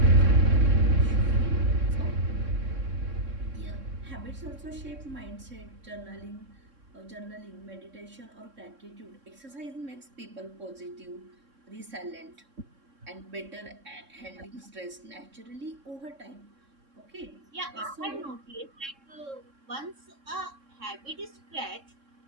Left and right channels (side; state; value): left; late; 3.6 ms